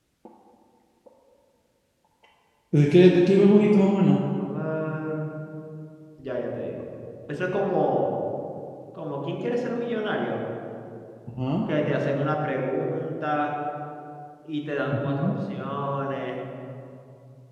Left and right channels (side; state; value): both; identical; correlation 1.00